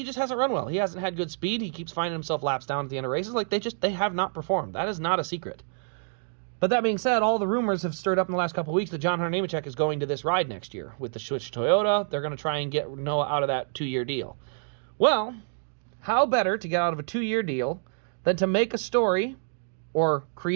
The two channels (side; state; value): left; silent; digital silence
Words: hasn't run well. He hasn't had good speed. He keeps finding himself laps down at the end of races. Like they have not performed. That is not a secret. But that being said, all the rumors have stirred up in the last couple of weeks that John Hunter Nemechek is going to this ride next year with the Switch Toyota. They're going to try and get Noah out of that 2-year deal. Well, how better to get out of a 2-year deal than to make a story or